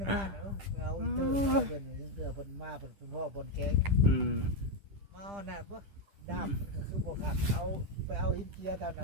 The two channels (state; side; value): late; left; 10 ms